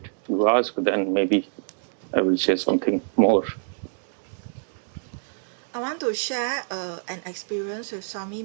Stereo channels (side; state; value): left; silent; digital silence